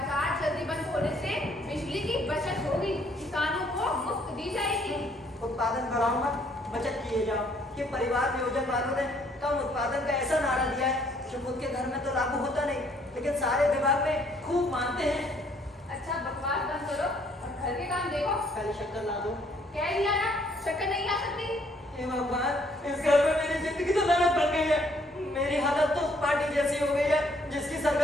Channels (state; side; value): normal; both; correlation 0.65